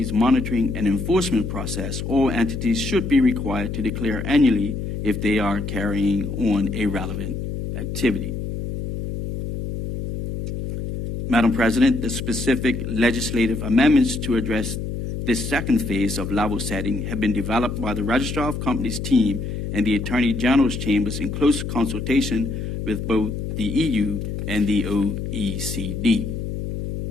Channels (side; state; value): left; noise; hum, 5 dB below the sound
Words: monitoring and enforcement process, all entities should be required to declare annually if they are carrying on a relevant activity. Madam President, the specific legislative amendments to address this second phase of level setting have been developed by the Registrar of Companies team and the Attorney General's chambers in close consultation with both the EU and the OECD.